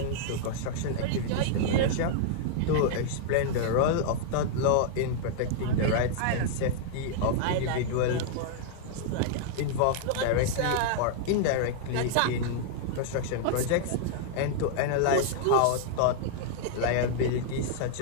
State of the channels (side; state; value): both; different; correlation -0.01